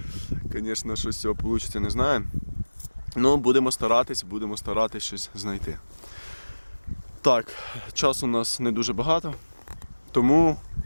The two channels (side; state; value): both; inverted; correlation -1.00